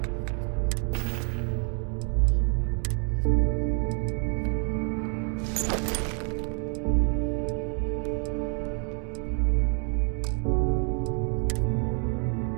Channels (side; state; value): left; quieter; 38.7 dB